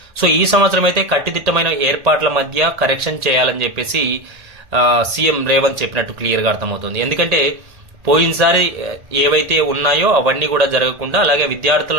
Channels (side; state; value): left; late; 1.8 ms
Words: సో ఈ సంవత్సరం అయితే కట్టుదిట్టమైన ఏర్పాట్ల మధ్య కరెక్షన్ చేయాలని చెప్పేసి సీఎం రేవంత్ చెప్పినట్టు క్లియర్ గా అర్థమవుతుంది. ఎందుకంటే పోయినసారి ఏవైతే ఉన్నాయో అవన్నీ కూడా జరగకుండా, అలాగే విద్యార్థుల